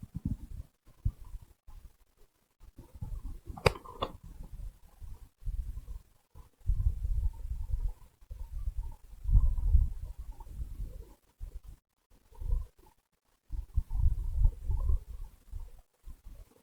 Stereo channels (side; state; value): both; identical; correlation 1.00